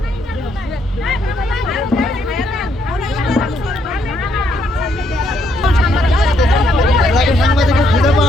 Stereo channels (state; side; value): normal; both; correlation 0.73